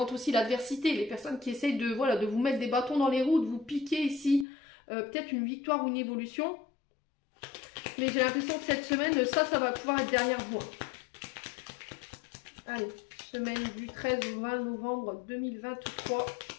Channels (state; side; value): drops out; right; at 4.5 s